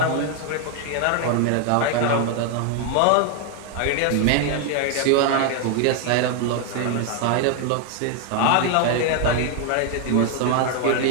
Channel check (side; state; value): both; different; correlation 0.01